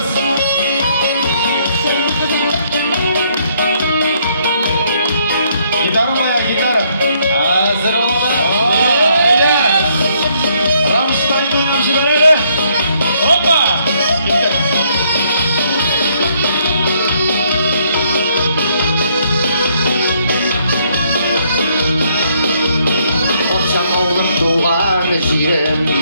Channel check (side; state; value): both; inverted; correlation -0.69